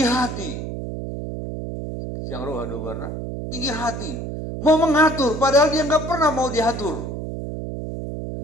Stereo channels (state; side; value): noise; right; hum, 6 dB below the sound